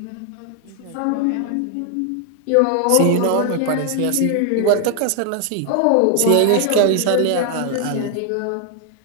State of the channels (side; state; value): both; different; correlation 0.00